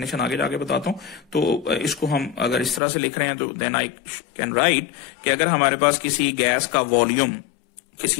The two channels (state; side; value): drops out; right; at 2.8 s